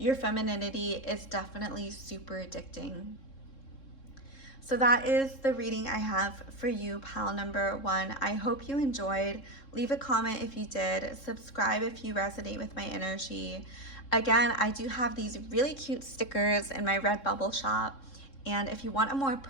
femininity. Is definitely super addicting. So that is the reading I have for you, pal number 1. I hope you enjoyed. Leave a comment if you did. Subscribe if you resonate with my energy. Again, I do have these really cute stickers in my Redbubble shop. And if you want a more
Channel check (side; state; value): right; late; 3.7 ms